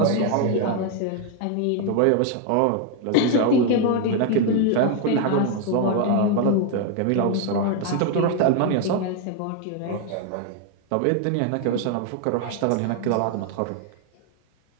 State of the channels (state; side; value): different; both; correlation 0.01